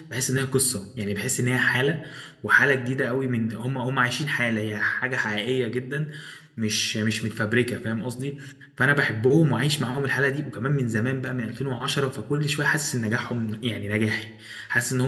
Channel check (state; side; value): identical; both; correlation 1.00